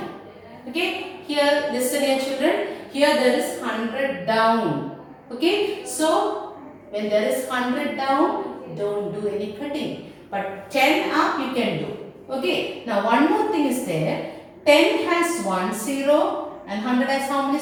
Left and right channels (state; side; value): identical; both; correlation 1.00